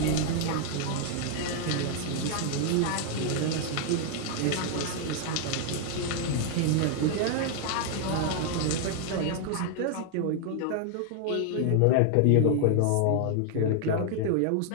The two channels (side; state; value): both; different; correlation 0.00